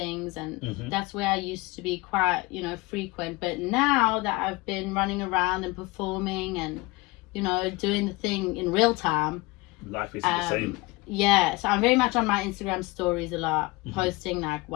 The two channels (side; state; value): right; quieter; 23.0 dB